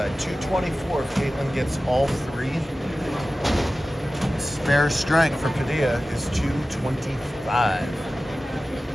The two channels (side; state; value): both; normal; correlation 0.95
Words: 224 if Caitlin gets all 3. Spare strike for Padilla is 225.